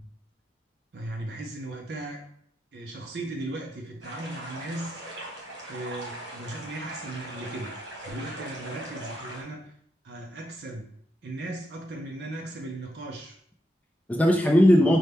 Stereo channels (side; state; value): both; normal; correlation 0.84